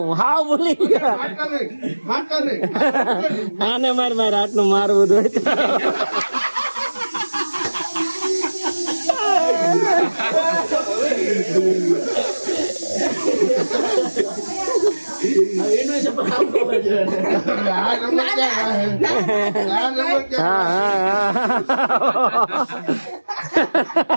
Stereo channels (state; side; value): inverted; both; correlation -1.00